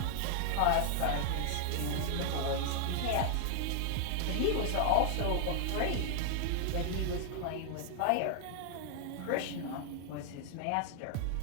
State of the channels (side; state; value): both; different; correlation 0.00